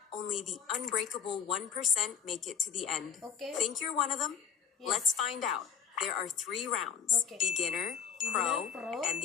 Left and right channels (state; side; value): quieter; right; 7.2 dB